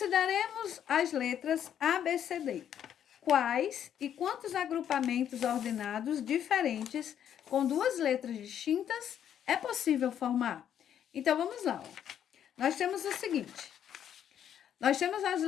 as letras A, B, C, D. Quais e quantos agrupamentos ordenados diferentes com duas letras distintas é possível formar? Então, vamos lá. Ó. Nós temos o seguinte. Nós temos as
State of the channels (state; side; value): quieter; right; 9.6 dB